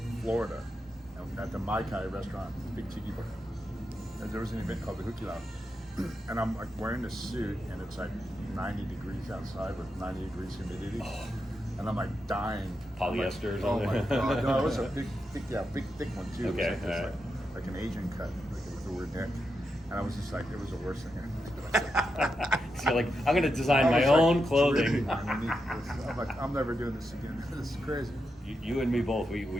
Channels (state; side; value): normal; both; correlation 0.86